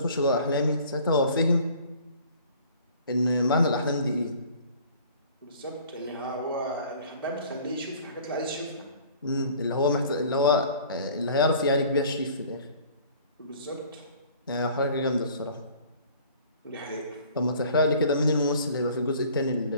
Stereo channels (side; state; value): both; inverted; correlation -0.50